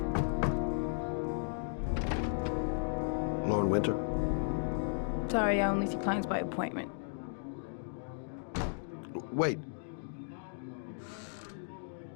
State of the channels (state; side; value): silent; right; digital silence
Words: Lauren Winter? Sorry, I only see clients by appointment. Wait.